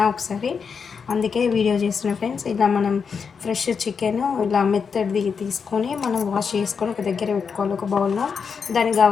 ఒకసారి, అందుకే వీడియో చేస్తున్నా ఫ్రెండ్స్. ఇలా మనం ఫ్రెష్ చికెన్ ఇలా మెత్తడిది తీసుకొని మనం వాష్ చేసుకొని ఒక దగ్గర పెట్టుకోవాలి, ఒక బౌల్లో. దానికి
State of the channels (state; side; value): quieter; right; 6.0 dB